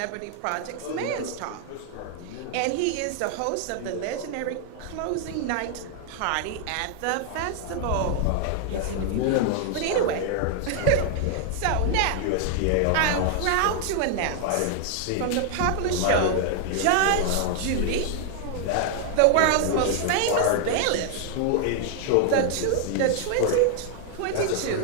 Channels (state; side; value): different; both; correlation 0.00